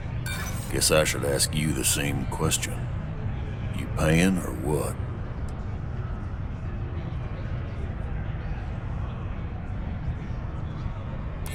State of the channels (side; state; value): both; identical; correlation 1.00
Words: Guess I should ask you the same question. You paying or what?